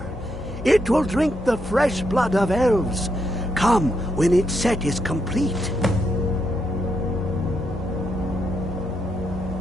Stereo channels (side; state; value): both; normal; correlation 0.79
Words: It will drink the fresh blood of elves. Come when its set is complete.